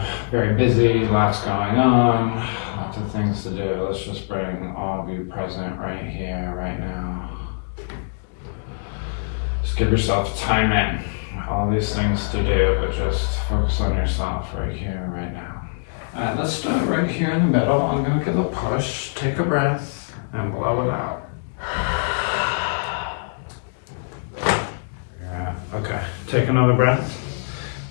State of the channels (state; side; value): silent; right; digital silence